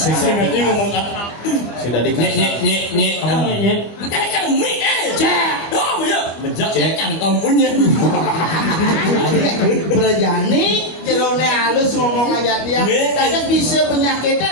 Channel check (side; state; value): right; late; 25 ms